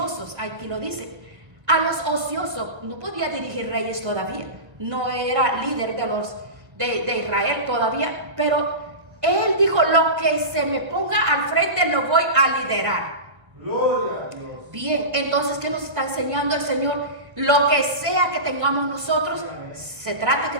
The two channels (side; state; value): left; late; 1.4 ms